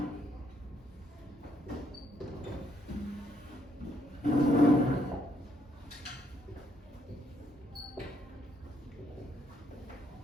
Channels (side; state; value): both; normal; correlation 0.72